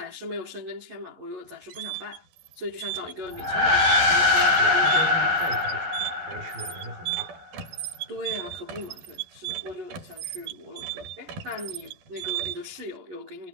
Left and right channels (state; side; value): late; left; 11 ms